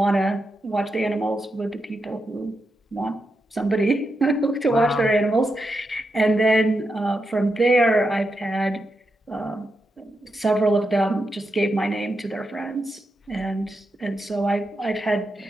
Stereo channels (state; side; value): normal; both; correlation 0.86